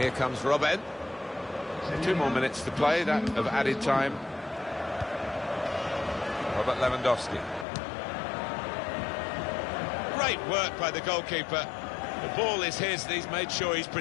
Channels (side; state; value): right; drops out; at 7.7 s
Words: here comes Robben. 2 more minutes to play, that of added time. Robert Lewandowski. Great work by the goalkeeper. The ball is his, and he's made sure he's